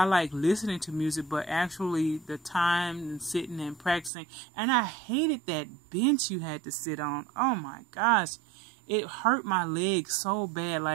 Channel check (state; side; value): drops out; left; at 4.1 s